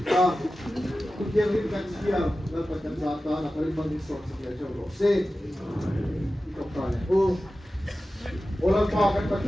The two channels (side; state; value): both; normal; correlation 0.94